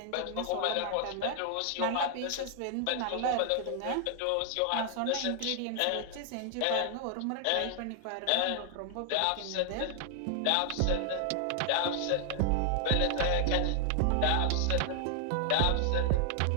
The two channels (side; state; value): both; different; correlation 0.00